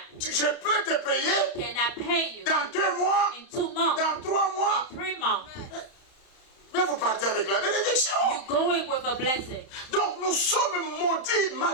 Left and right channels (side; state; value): right; late; 31 ms